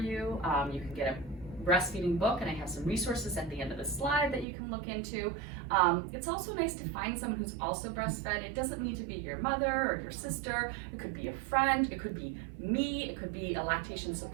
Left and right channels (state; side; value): drops out; left; at 4.5 s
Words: You can get a breastfeeding book, and I have some resources at the end of the slide that you can look into. It's also nice to find someone who's also breastfed. It doesn't need to be your mother or your sister. It could be a friend. It could be me. It could be a lactation